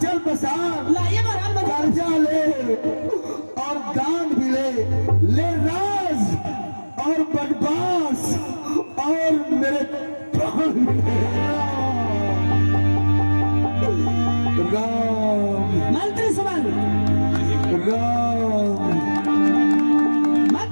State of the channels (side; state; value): both; inverted; correlation -1.00